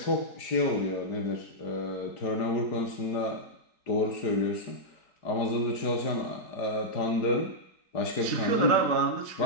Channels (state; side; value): late; right; 4.7 ms